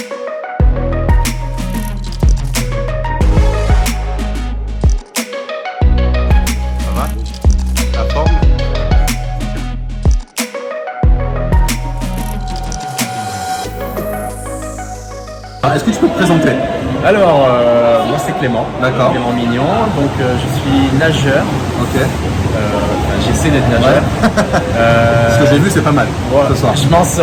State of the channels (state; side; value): identical; both; correlation 1.00